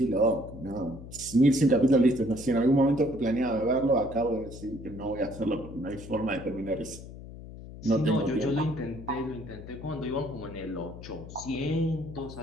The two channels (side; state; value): left; noise; hum, 14 dB below the sound